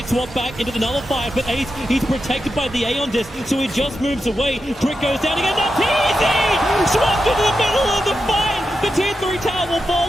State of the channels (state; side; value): normal; both; correlation 0.88